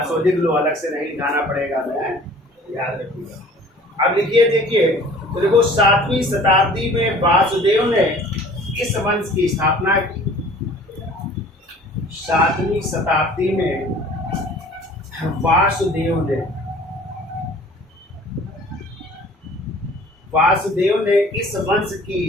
लिख लो, अलग से नहीं लिखाना पड़ेगा, मैं याद रखिएगा। अब लिखिए, देखिए तो देखो 7वीं शताब्दी में वासुदेव ने इस वंश की स्थापना की। 7वीं शताब्दी में वासुदेव ने इस वंश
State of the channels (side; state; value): both; normal; correlation 0.49